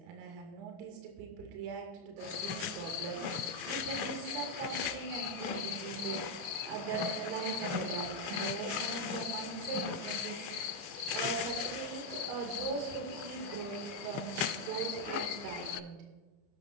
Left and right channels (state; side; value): late; left; 29 ms